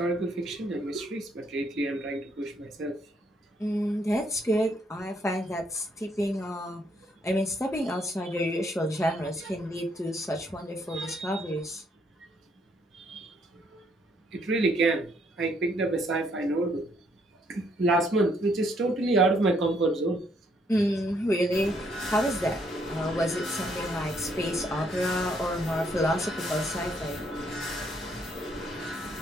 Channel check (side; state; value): both; normal; correlation 0.70